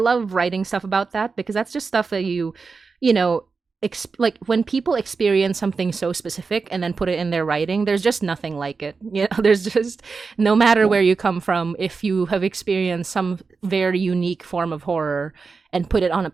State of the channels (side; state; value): left; quieter; 4.7 dB